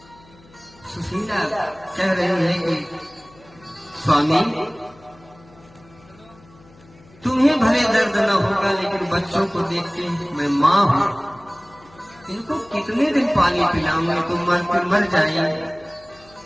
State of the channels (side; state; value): left; noise; hum, 26 dB below the sound